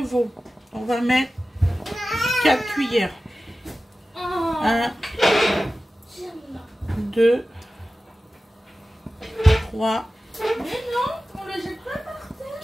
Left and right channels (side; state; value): both; normal; correlation 0.95